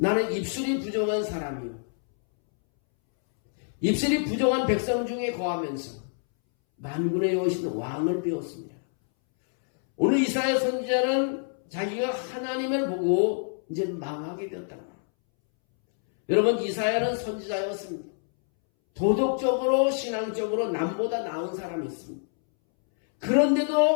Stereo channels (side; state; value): right; silent; 60 dB below the other